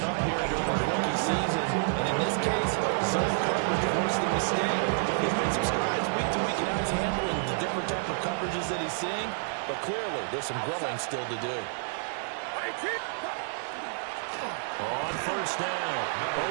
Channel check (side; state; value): left; silent; digital silence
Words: up here during the rookie season. And in this case, zone coverage forced the mistake. He's made some strides week to week in how he's handling the different type of coverages that he's seeing. But clearly, there's some growing still to do. On 1st down,